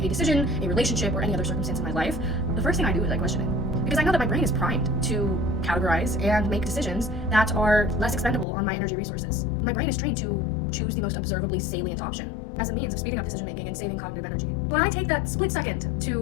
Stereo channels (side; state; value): right; drops out; at 8.5 s